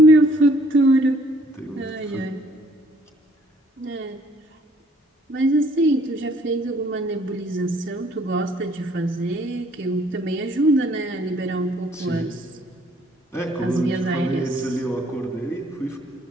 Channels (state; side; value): normal; both; correlation 0.61